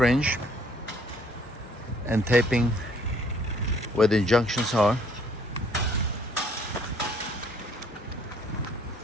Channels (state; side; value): normal; both; correlation 0.61